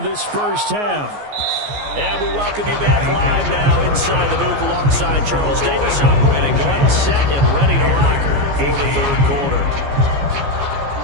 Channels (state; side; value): late; left; 14 ms